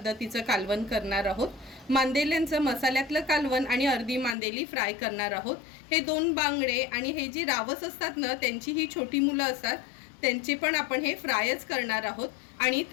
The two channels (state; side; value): drops out; right; at 4.4 s